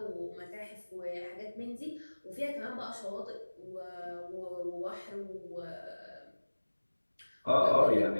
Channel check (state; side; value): inverted; both; correlation -1.00